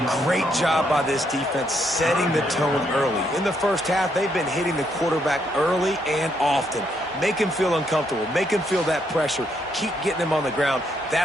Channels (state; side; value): normal; both; correlation 0.75